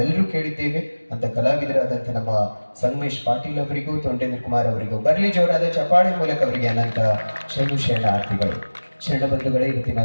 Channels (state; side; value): inverted; both; correlation -1.00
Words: ಕೇಳಿದ್ದೇವೆ. ಅಂತ ಕಲಾವಿದರಾದಂಥ ನಮ್ಮ ಸಂಗಮೇಶ್ ಪಾಟೀಲ್ ಅವರಿಗೂ ತೊಂಡೇಂದ್ರ ಕುಮಾರ್ ಅವರಿಗೂ ಬರಲಿ ಜೋರಾದ ಚಪಾಳಿ ಮೂಲಕ ಅವರಿಗೆ ಅನಂತ ಶರಣಾರ್ಥಿಗಳು. ಶರಣಬಂಧುಗಳೇ, ಇವತ್ತಿನ